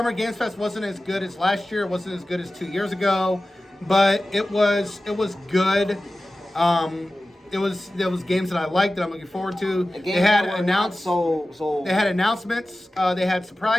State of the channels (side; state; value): both; normal; correlation 0.95